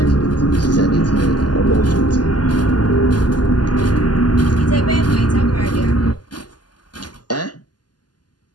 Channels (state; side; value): late; right; 0.70 ms